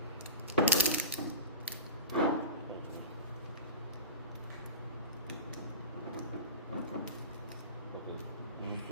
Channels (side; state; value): both; inverted; correlation -0.31